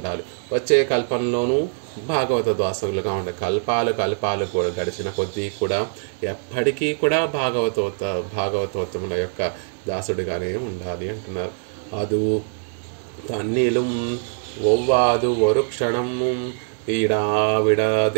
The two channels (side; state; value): left; silent; 64 dB below the other